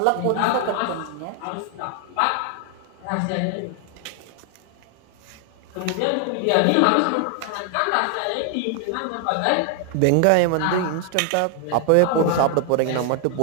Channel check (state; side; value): different; both; correlation 0.00